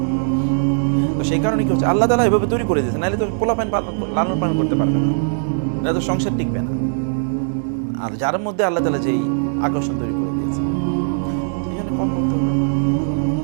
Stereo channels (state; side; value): silent; left; digital silence